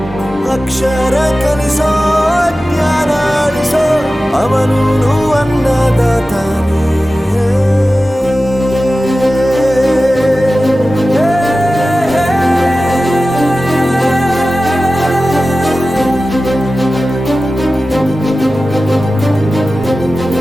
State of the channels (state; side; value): normal; both; correlation 0.95